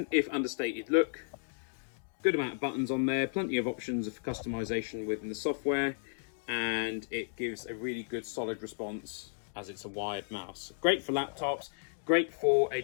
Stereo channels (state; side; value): silent; right; digital silence